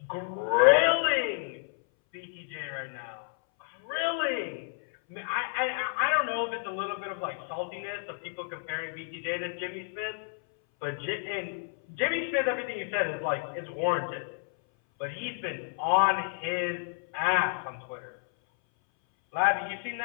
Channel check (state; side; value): silent; right; 58 dB below the other